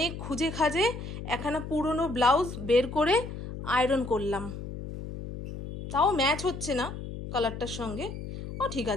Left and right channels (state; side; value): noise; left; hum, 9 dB below the sound